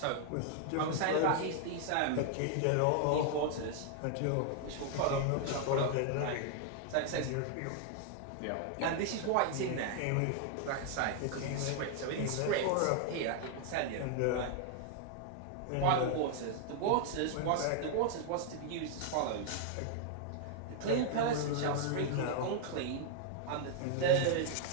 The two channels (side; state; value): both; different; correlation 0.00